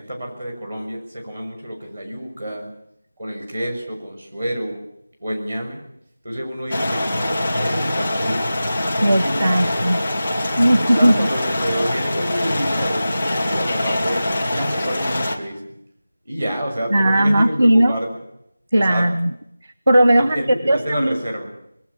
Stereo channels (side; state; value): both; inverted; correlation -0.95